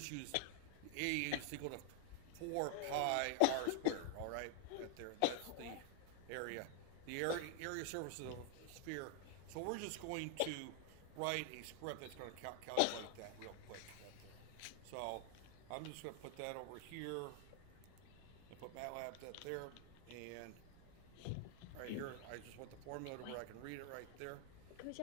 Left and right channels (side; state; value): both; different; correlation 0.00